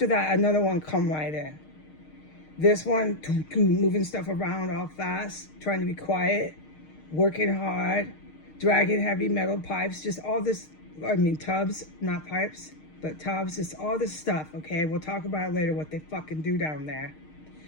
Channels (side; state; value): right; late; 6.5 ms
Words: that, another one come right in. This one, moving stuff around all fast, trying to be quiet, working hard, dragging heavy metal pipes, just all this, tubs, not pipes, but tubs, just all this stuff, okay? We'll talk about it later, what they fucking do down there.